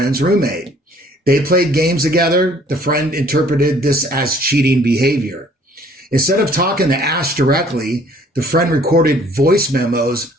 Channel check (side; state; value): both; normal; correlation 0.57